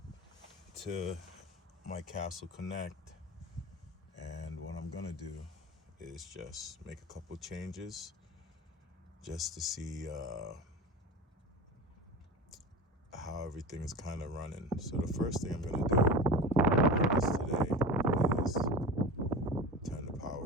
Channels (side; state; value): both; normal; correlation 0.30